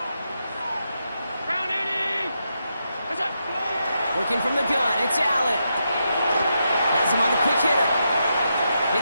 Crown 80. That's it. Working from the gun, it's Allen. Has him on the quick hitter.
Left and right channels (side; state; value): both; inverted; correlation -0.84